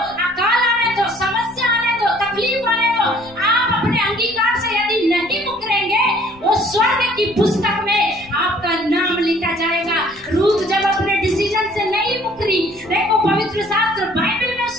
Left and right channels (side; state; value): left; noise; rumble, 28 dB below the sound